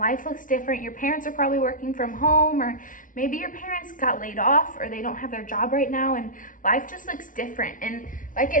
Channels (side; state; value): right; late; 0.38 ms